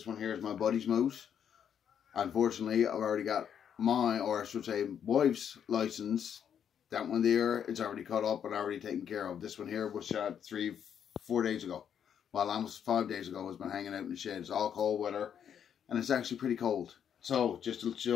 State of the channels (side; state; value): right; quieter; 8.5 dB